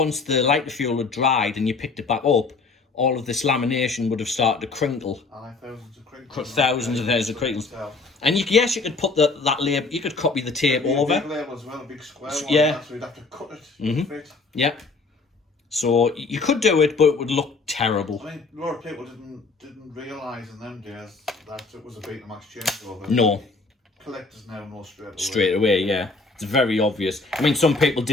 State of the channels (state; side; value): quieter; right; 3.9 dB